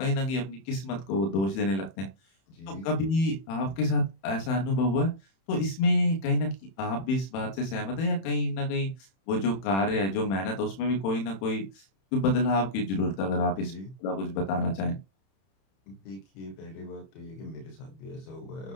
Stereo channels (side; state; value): right; late; 31 ms